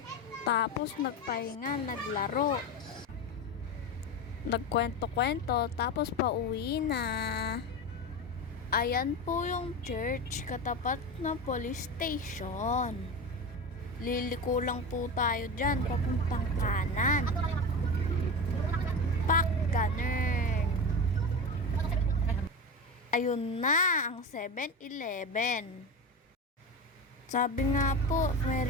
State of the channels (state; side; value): normal; both; correlation 0.23